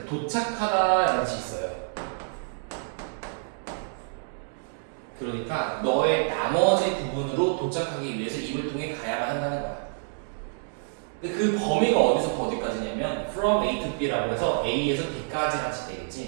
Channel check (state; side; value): silent; left; digital silence